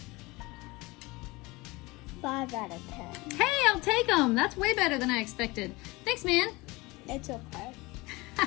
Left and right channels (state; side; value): quieter; right; 23.0 dB